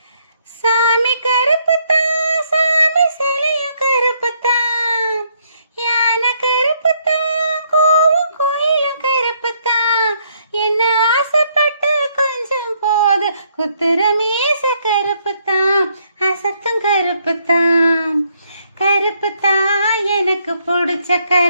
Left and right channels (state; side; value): inverted; both; correlation -0.71